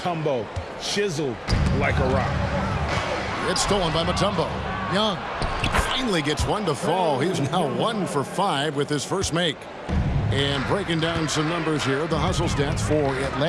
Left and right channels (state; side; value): identical; both; correlation 1.00